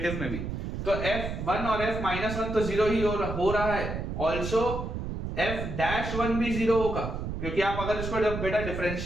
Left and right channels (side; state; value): right; noise; rumble, 5 dB below the sound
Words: में भी। तो f1 और f माइनस 1 तो जीरो ही हो रहा है, ऑल्सो f डैश 1 भी जीरो होगा, क्योंकि आप अगर इसको बेटा